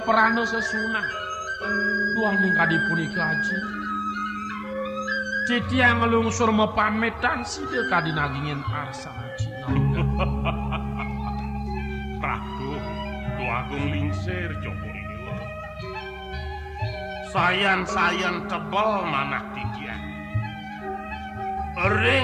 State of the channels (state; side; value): identical; both; correlation 1.00